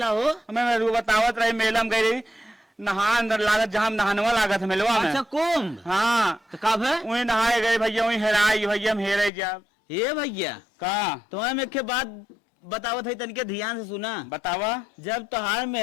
हो? हमें बतावत रही मेला में गई रही नहा अंदर लागत जहाँ नहानवा लागत मेलवा में। अच्छा कुंभ। हाँ तो कब है? वही नहाए गए भैया वही हेराई भैया हम हेरे जा। ये भैया का तुम्हें मैं के बात बतावत है तनिके ध्यान से सुना। बतावा। जब तोहार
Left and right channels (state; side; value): drops out; right; at 9.3 s